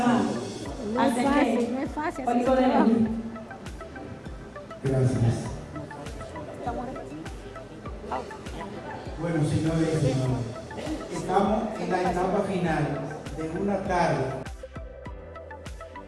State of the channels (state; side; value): identical; both; correlation 1.00